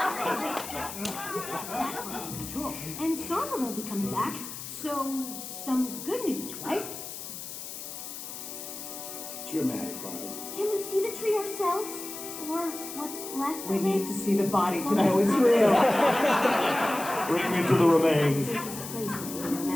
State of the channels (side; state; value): left; noise; hiss, 9 dB below the sound